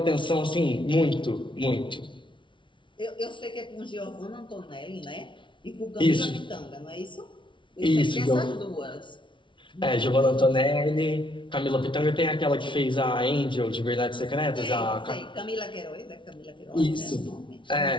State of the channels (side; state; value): right; late; 0.24 ms